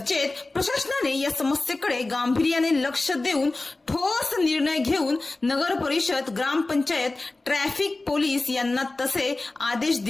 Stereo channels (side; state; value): right; quieter; 3.1 dB